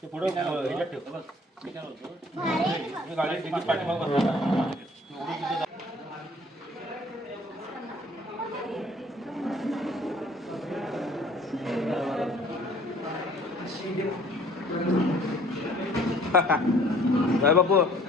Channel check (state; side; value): normal; both; correlation 0.55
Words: ते पुढे ह्याच्यात ठेव गाडीत तिकीट पाठीमागे बसवलं. काय बापू